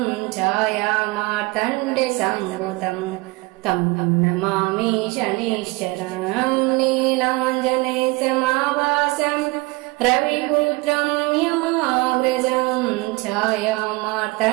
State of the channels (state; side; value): quieter; left; 24.5 dB